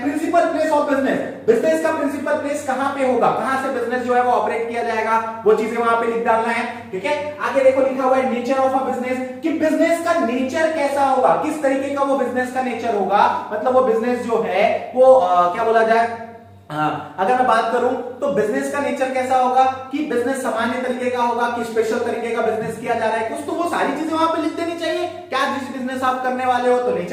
Principal place of business, business का प्रिंसिपल प्लेस कहां पे होगा, कहां से बिजनेस जो है वो ऑपरेट किया जाएगा, वो चीजें वहां पे लिख डालना है, ठीक है। आगे देखो लिखा हुआ है नेचर ऑफ अ बिजनेस, कि बिजनेस का नेचर कैसा होगा, किस तरीके का वो बिजनेस का नेचर होगा, मतलब वो बिजनेस जो है वो क्या बोला जाए, अगर मैं बात करूं तो बिजनेस का नेचर कैसा होगा, कि बिजनेस सामान्य तरीके का होगा कि स्पेशल तरीके का बिजनेस किया जा रहा है कुछ, तो वो सारी चीजें वहां पे लिख देनी चाहिए। क्या जिस बिजनेस आप करने वाले हो, तो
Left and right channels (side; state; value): both; identical; correlation 1.00